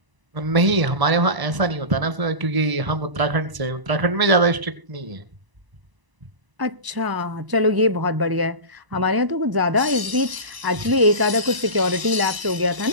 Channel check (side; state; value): left; late; 1.0 ms